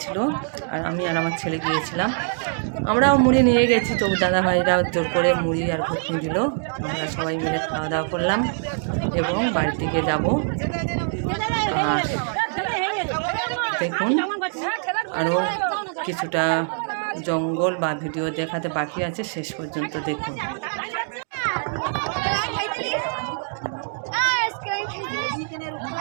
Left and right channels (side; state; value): left; silent; digital silence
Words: আর আমি আর আমার ছেলে গিয়েছিলাম। আমরাও মুড়ি নিয়ে গেছি, তবু দাদাভাইরা জোর করে মুড়ি আর ঘুগনি দিল। আমরা সবাই মিলে খাওয়া দাওয়া করলাম এবং বাড়ির দিকে যাব। আর দেখুন আরও কিছুটা জঙ্গল বা ভিডিও দেখাতে বাকি আছে, শেষ পর্যন্ত দেখুন।